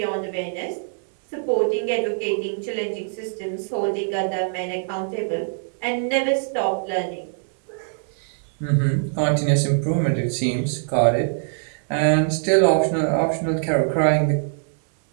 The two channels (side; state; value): left; silent; digital silence